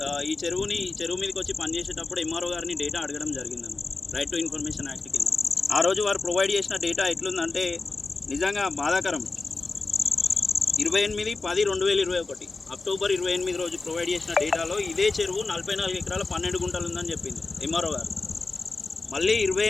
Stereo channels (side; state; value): right; quieter; 3.6 dB